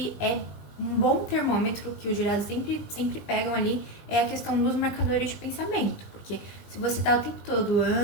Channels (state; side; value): late; right; 20 ms